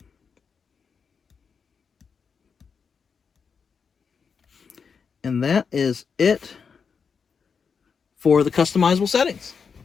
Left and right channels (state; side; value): quieter; right; 6.0 dB